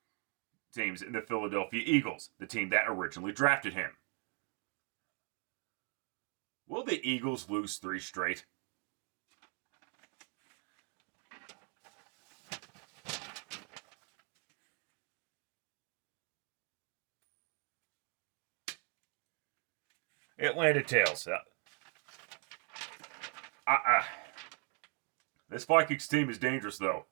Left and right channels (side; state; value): left; quieter; 36.2 dB